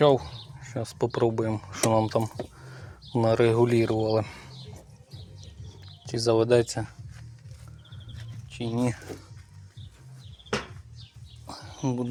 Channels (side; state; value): both; identical; correlation 1.00